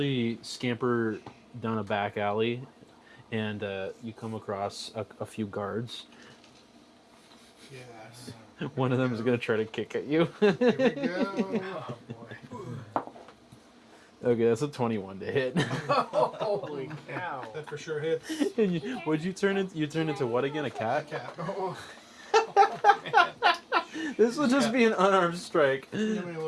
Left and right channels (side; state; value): both; identical; correlation 1.00